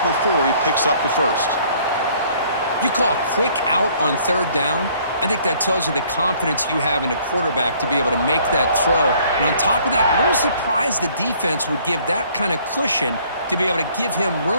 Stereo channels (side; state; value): both; inverted; correlation -0.59